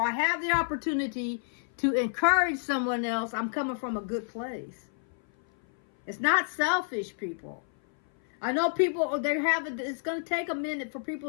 have the opportunity to encourage someone else, I'm coming from a good place. It's not selfish, people. I know people, it's going to take a minute for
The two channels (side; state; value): right; silent; 57 dB below the other